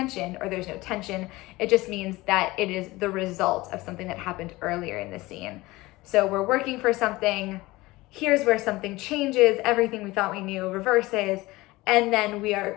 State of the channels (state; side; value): quieter; right; 20.2 dB